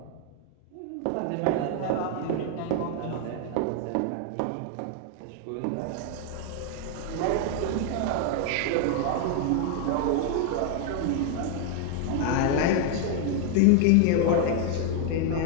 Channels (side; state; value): both; different; correlation 0.00